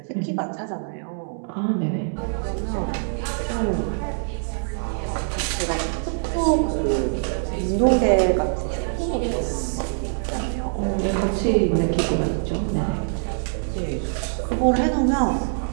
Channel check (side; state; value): left; silent; 63 dB below the other